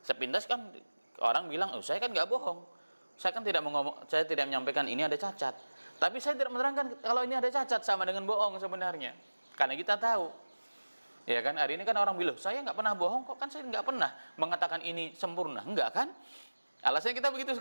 sepintas kan orang bilang, saya kan nggak bohong, saya kan saya tidak menyampaikan ini ada cacat. Tapi saya tidak menerangkan kalau ini ada cacat, sama dengan bohong sebenarnya. Karena kita tahu. Ya kan, hari ini kan orang bilang, saya nggak pernah bohong kok, kan saya nggak pernah mengatakan ini sempurna. Enggak kan? Alasannya kita begitu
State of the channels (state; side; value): inverted; both; correlation -1.00